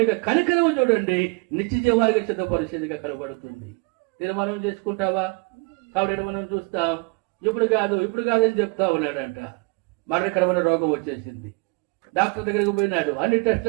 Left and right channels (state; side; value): quieter; left; 29.8 dB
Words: కనికరం చూడండి, నిత్య జీవానికి సిద్ధ పరిస్థితిగా కనబడుతుంది. తీర్మానం చేసుకుంటావా? కాబట్టి మనం చూస్తాం, ఇప్పుడు కాదని చెప్తా ఉన్నాడంట. మరణకరమైన రోగం వచ్చేసింది. డాక్టర్ దగ్గరికి పోయినాడు, అన్ని